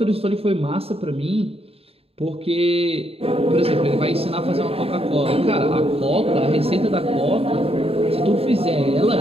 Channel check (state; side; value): late; left; 0.28 ms